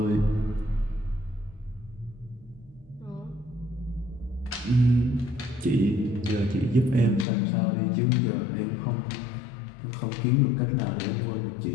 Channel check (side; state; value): right; drops out; at 7.2 s